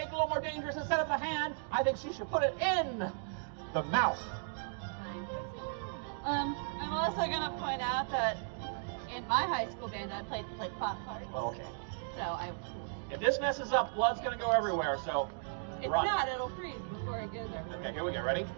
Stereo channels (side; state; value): left; silent; digital silence